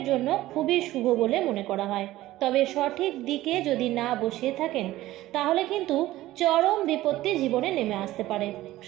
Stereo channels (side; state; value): left; quieter; 16.0 dB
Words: জন্য খুবই শুভ বলে মনে করা হয়। তবে সঠিক দিকে যদি না বসিয়ে থাকেন তাহলে কিন্তু চরম বিপত্তি জীবনে নেমে আসতে পারে।